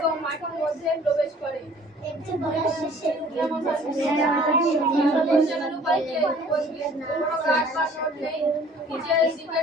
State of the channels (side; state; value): both; normal; correlation 0.53